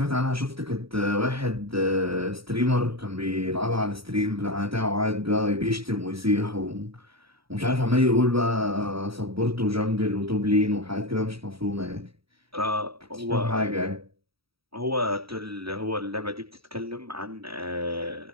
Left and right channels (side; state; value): left; late; 0.76 ms